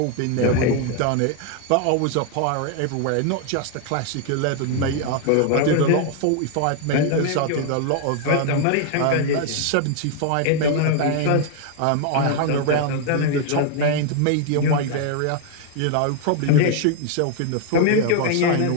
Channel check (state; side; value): different; both; correlation 0.00